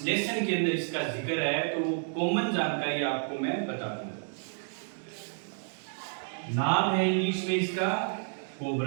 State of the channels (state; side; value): silent; left; digital silence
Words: लेसन के अंदर इसका जिक्र है, तो वो कॉमन जानकारी आपको मैं बता दूंगा। नाम है इंग्लिश में इसका